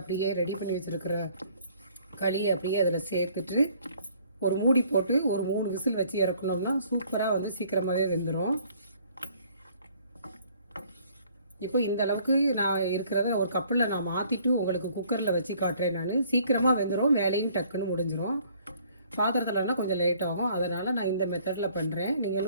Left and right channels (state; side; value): inverted; both; correlation -0.59